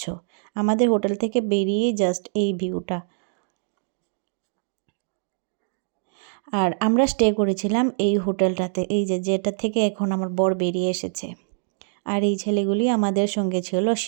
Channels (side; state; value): left; silent; digital silence